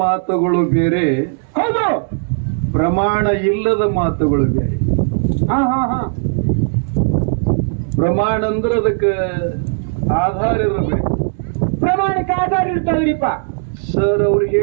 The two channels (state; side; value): silent; left; digital silence